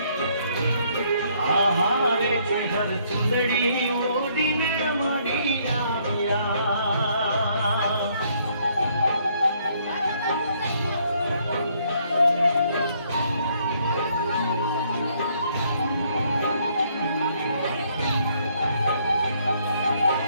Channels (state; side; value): inverted; both; correlation -0.68